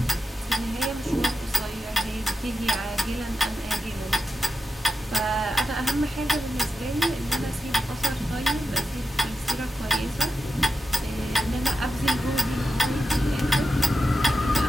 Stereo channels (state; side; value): normal; both; correlation 0.90